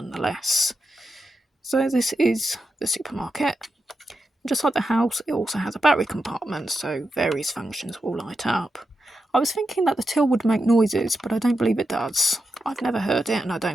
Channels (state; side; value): normal; both; correlation 0.87